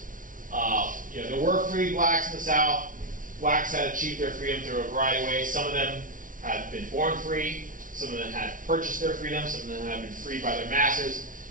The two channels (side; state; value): left; late; 0.38 ms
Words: There were free blacks in the South. Blacks had achieved their freedom through a variety of ways. Some of them had been born free. Some of them had purchased their freedom. Some of them had been freed by their masters.